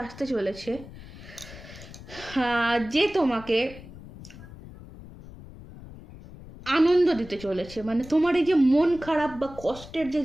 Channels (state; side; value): noise; left; rumble, 17 dB below the sound